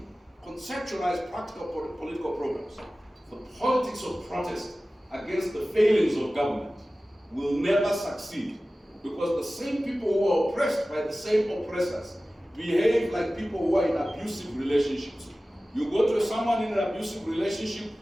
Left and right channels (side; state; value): both; normal; correlation 0.96